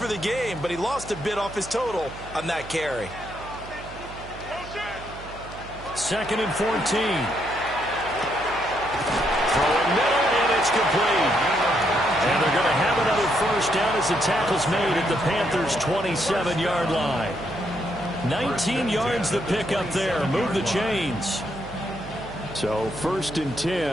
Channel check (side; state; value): right; noise; hum, 15 dB below the sound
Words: the game, but he lost a bit off his total on that carry. 2nd and 14. Throwing middle, and it's complete. And they're going to have another first down as the tackle's made at the Panthers' 27-yard line. 19 yards the pick up there. Move the chains. So 1st and